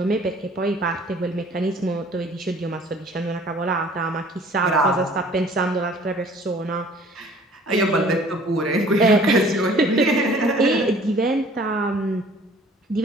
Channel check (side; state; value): both; normal; correlation 0.52